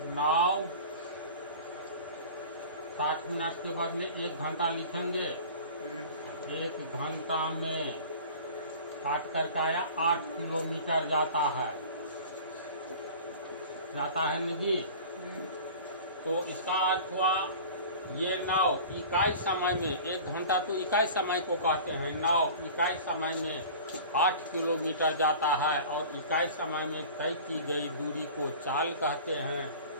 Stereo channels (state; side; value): inverted; both; correlation -0.40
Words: नाव 60 मिनट के बदले 1 घंटा लिखेंगे। 1 घंटा में काट करके आया 8 किलोमीटर जाता है न जी। तो इसका अर्थ हुआ ये नाव इकाई समय में, 1 घंटा तो इकाई समय को कहते हैं, नाव इकाई समय में 8 किलोमीटर जाता है और इकाई समय में तय की गई दूरी को चाल कहते हैं।